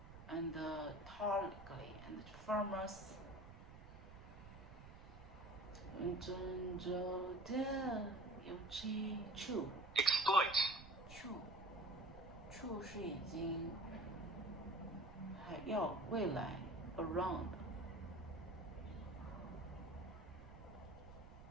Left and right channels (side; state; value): right; noise; rumble, 15 dB below the sound